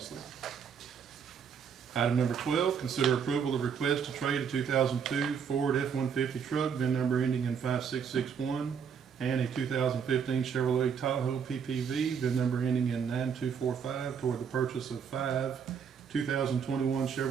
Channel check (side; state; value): left; quieter; 7.0 dB